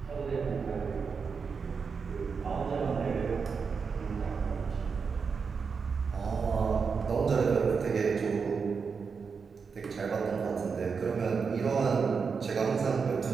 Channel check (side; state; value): left; quieter; 5.5 dB